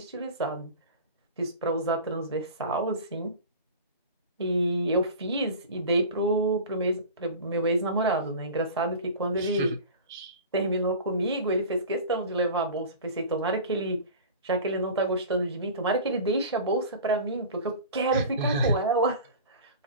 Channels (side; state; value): both; inverted; correlation -0.36